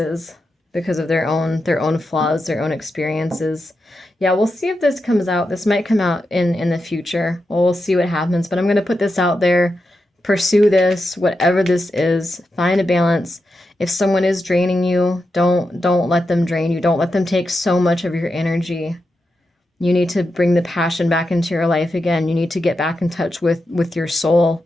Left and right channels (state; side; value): normal; both; correlation 0.88